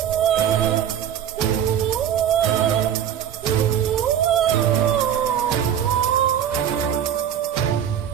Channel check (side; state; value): left; quieter; 9.6 dB